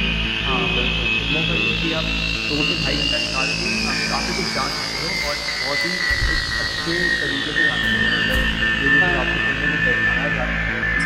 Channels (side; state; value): both; identical; correlation 1.00